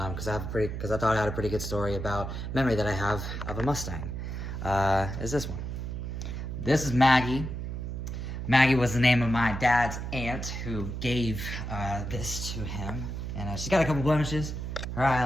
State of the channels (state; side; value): noise; right; hum, 5 dB below the sound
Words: I thought I had a pretty good story about memory that I have of a Mustang. Is this one? This is Maggie. Maggie was the name of my dad's aunt who gave this to him. And she's got a couple blemishes. Her